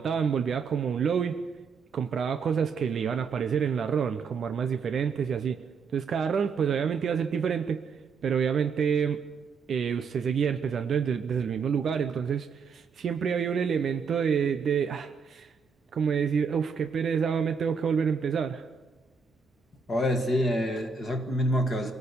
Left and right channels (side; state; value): left; quieter; 5.4 dB